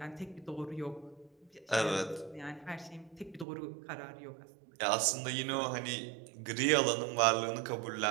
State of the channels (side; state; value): left; drops out; at 3.5 s